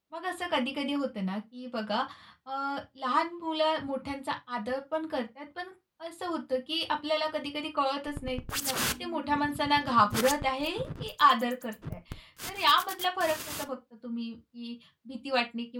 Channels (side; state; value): both; identical; correlation 1.00